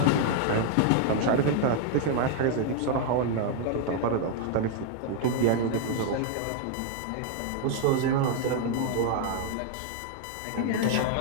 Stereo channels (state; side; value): different; both; correlation 0.00